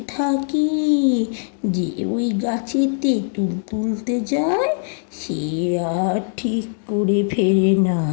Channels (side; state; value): right; silent; digital silence